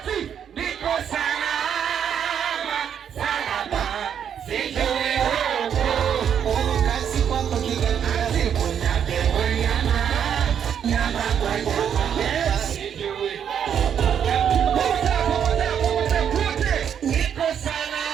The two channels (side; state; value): left; quieter; 8.5 dB